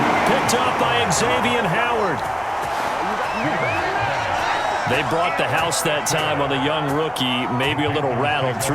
Picked up by Xavier Howard. They brought the house that time on the young rookie, maybe a little rattled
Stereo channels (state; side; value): identical; both; correlation 1.00